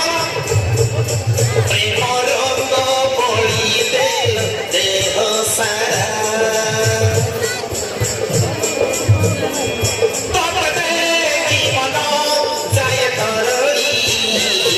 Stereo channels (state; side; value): identical; both; correlation 1.00